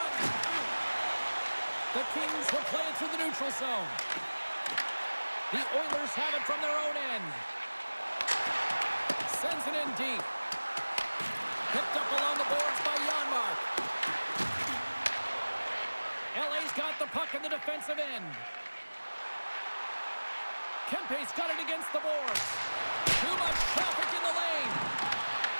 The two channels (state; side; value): inverted; both; correlation -1.00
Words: The Kings will play it through the neutral zone. The Oilers have it from their own end. Sends it in deep. Picked up along the boards by Janmark. LA's got the puck in the defensive end. Kempe's got it against the boards. Too much traffic in the lane.